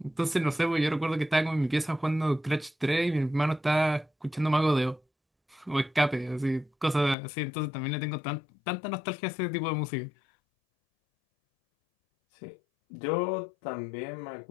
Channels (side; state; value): right; drops out; at 7.2 s